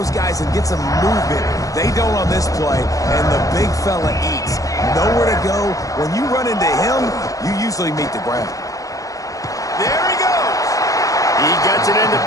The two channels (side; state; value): right; late; 0.17 ms